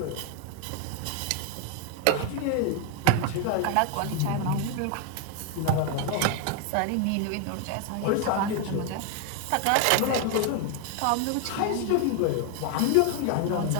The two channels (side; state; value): both; different; correlation 0.01